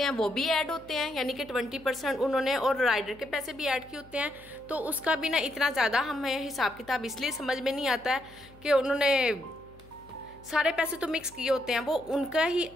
हैं वो भी ऐड होते हैं, यानी कि 20% उन्होंने और राइडर के पैसे भी ऐड किए होते हैं। तो उसका भी ना इतना ज़्यादा हमें हिसाब किताब इसलिए समझ में नहीं आता है कि उन्होंने सारे पैसे तो मिक्स किए होते हैं। वो उनका ही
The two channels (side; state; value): left; noise; hum, 24 dB below the sound